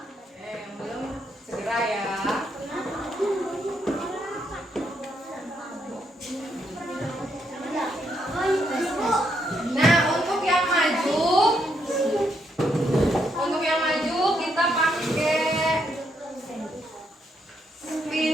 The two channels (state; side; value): normal; both; correlation 0.76